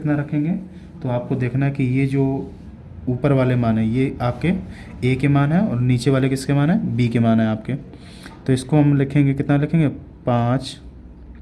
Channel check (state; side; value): identical; both; correlation 1.00